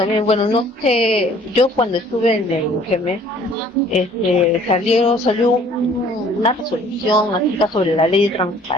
bueno, no sé, yo cuando estuve en el GEMES, salió una resolución acerca sobre la ley de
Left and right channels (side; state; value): both; normal; correlation 0.55